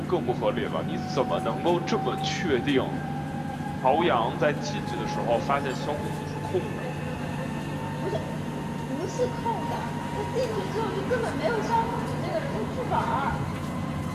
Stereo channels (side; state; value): both; identical; correlation 1.00